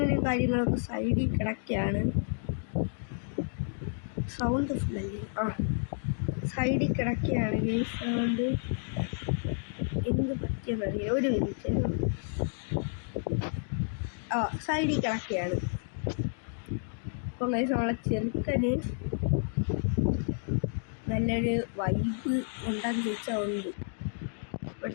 കാര്യങ്ങളൊക്കെ സൈഡിൽ കിടക്കുകയാണ്. സൗണ്ട് സൈഡിൽ കിടക്കുകയാണ്. ഈ സൗണ്ട് എന്ത് പറ്റിയെന്നറിയാം. ഒരു മിനിറ്റ്. സൈഡിൽ കിടക്കുകയാണ്. അപ്പം ഗൈസ് നമ്മളെ ചെറുക്കന് നല്ലൊരു വൈബ് ഉണ്ടാന്ന് ചോദിച്ചാൽ ഉണ്ട്.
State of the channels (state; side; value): silent; right; digital silence